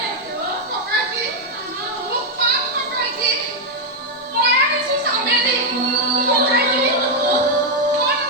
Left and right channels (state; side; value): normal; both; correlation 0.00